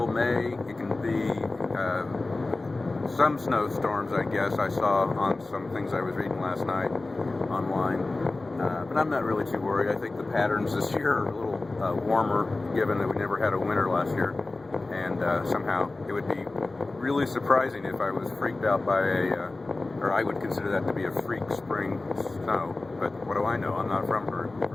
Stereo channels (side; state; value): right; quieter; 3.2 dB